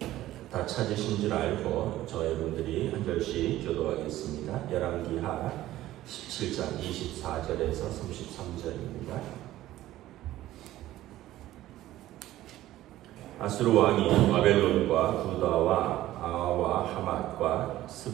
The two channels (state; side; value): quieter; left; 14.8 dB